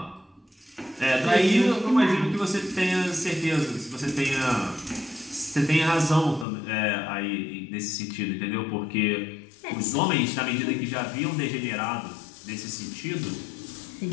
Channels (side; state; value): right; drops out; at 6.5 s